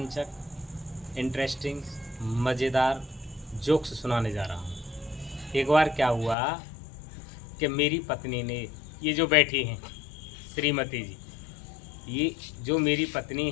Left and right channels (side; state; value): right; drops out; at 6.4 s